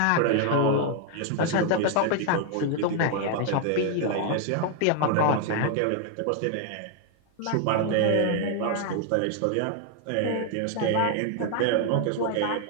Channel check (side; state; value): both; different; correlation 0.00